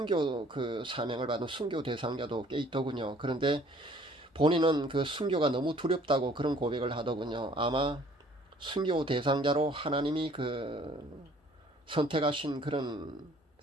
그 사명을 받은 순교 대상자도 꽤 있더군요. 그런데 본인은 그 순교가 너무 두렵다고 그런 고백을 하더군요. 아마 순교 대상자로 하나님이 선택하신 그런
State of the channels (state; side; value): normal; both; correlation 0.56